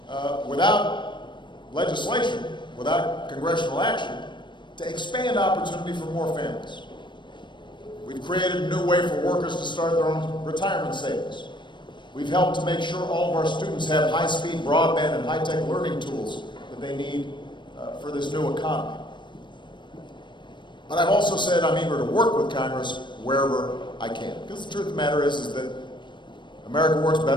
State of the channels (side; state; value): right; late; 0.22 ms